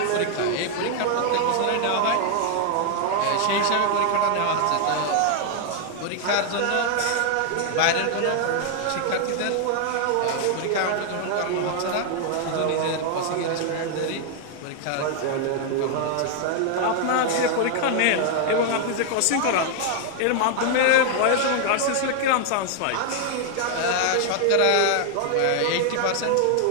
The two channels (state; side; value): different; both; correlation 0.00